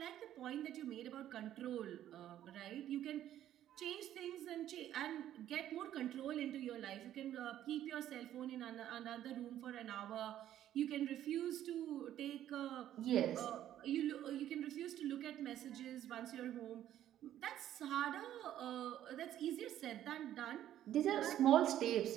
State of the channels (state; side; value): quieter; left; 11.9 dB